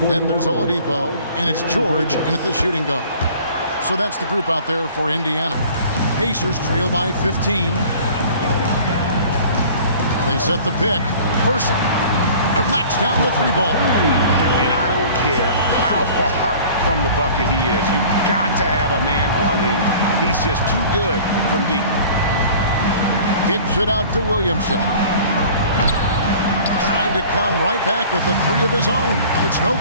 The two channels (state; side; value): inverted; both; correlation -0.46